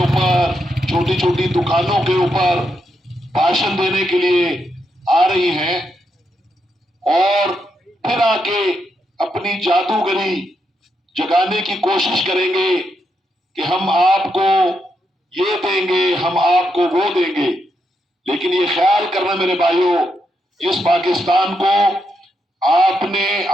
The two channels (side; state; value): both; normal; correlation 0.82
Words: چھوٹی چھوٹی دکانوں کے اوپر بھاشن دینے کے لیے آ رہی ہیں اور پھر آ کے اپنی جادوگری جگانے کی کوشش کریں گے کہ ہم آپ کو یہ دیں گے، ہم آپ کو وہ دیں گے۔ لیکن یہ خیال کرنا میرے بھائیوں، اس پاکستان کو آپ نے،